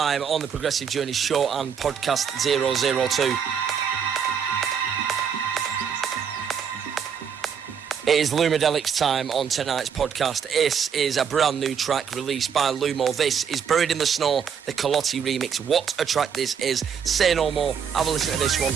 on the Progressive Journey show and podcast 002. It is Lumidelic's time on tonight's podcast. This is a brand new track released by Lumo. This is Buried in the Snow, the Kelotti remix. What a track this is. Say no more. Have a listen to this one.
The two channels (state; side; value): quieter; left; 7.3 dB